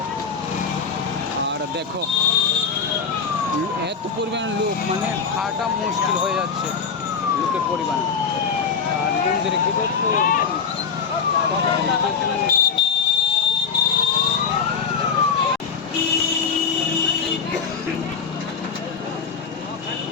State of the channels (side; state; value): right; quieter; 6.0 dB